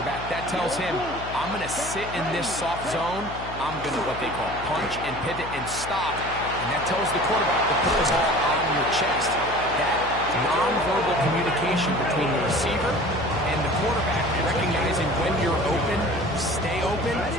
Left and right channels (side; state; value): left; noise; hum, 12 dB below the sound